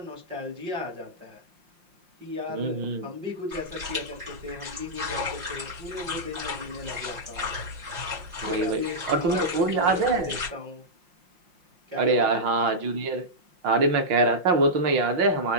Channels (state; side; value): late; left; 5.7 ms